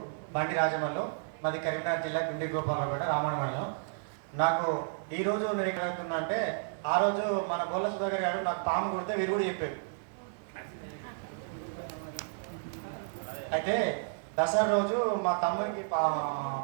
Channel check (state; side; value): silent; left; digital silence